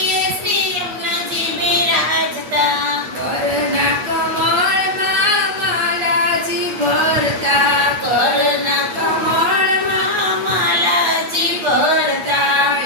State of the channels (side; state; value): left; late; 8.3 ms